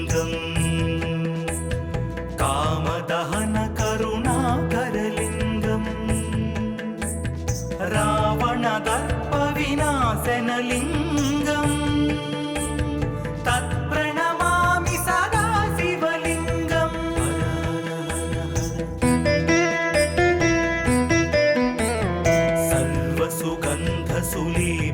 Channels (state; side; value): identical; both; correlation 1.00